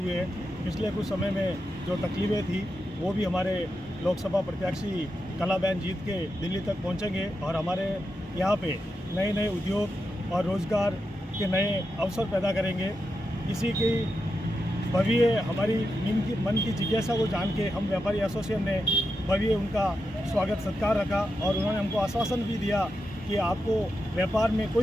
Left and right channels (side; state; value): both; normal; correlation 0.87